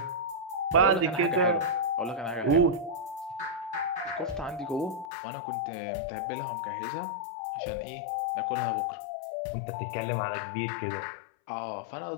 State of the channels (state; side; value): drops out; right; at 5.1 s